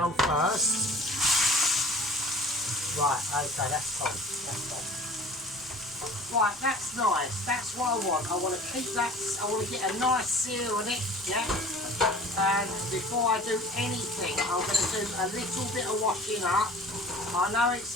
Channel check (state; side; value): normal; both; correlation 0.44